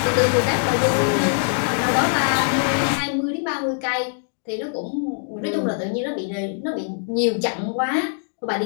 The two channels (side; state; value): right; silent; digital silence